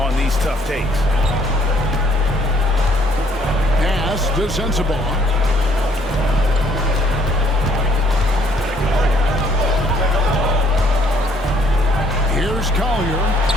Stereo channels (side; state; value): both; normal; correlation 0.64